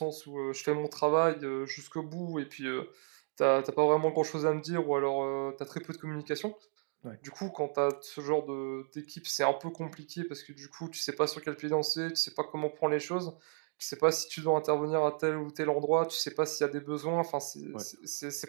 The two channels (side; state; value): left; silent; 55 dB below the other